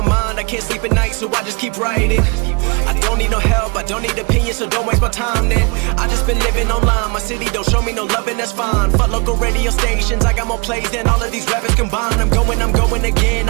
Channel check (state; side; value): quieter; left; 30.5 dB